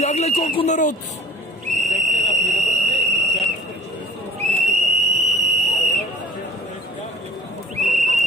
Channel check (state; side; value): normal; both; correlation 0.47